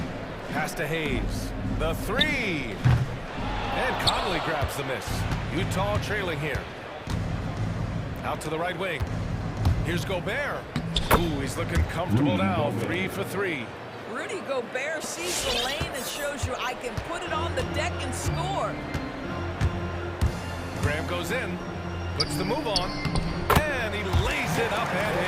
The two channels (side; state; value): both; identical; correlation 1.00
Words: Pass to Hayes. The three. And Conley grabs the miss. Utah trailing here. Out to the right wing. Here's Gobert. Ooh, he's looking comfortable now. 3 for 3. Rudy Gobert sees the lane and shows you I can put it on the deck and score. Graham goes in, puts the move on, and he lays it up and